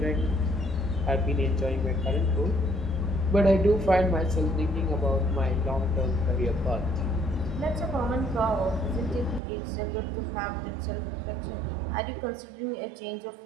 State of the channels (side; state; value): left; drops out; at 9.4 s